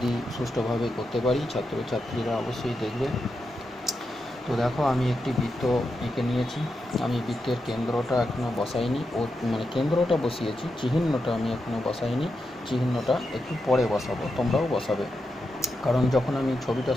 সুষ্ঠুভাবে করতে পারি, ছাত্রছাত্রীরা অবশ্যই দেখবে। তো দেখো, আমি একটি বৃত্ত এঁকে নিয়েছি। আমি বৃত্তের কেন্দ্রটা এখনও বসাইনি, কেন্দ্রটা বসিয়েছি, চিহ্নটা আমি এখনও বসাইনি। চিহ্নটা একটু পরে বসাবো, তোমরাও বসাবে। কারণ যখন আমি ছবিটা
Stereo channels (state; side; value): normal; both; correlation 0.87